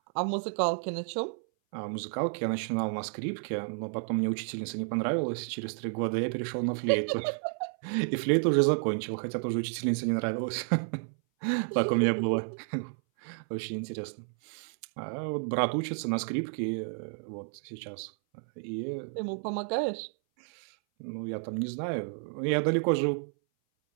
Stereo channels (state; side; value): silent; left; 57 dB below the other